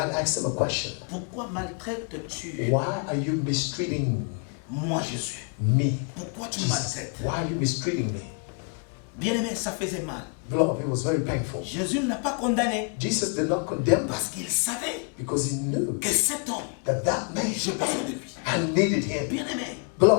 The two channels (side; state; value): right; quieter; 37.6 dB